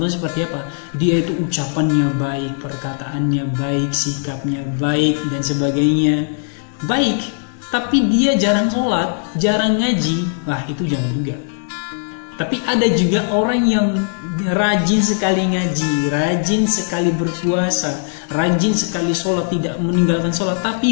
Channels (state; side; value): silent; right; digital silence